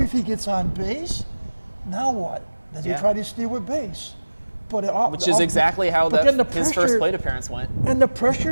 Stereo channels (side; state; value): both; inverted; correlation -1.00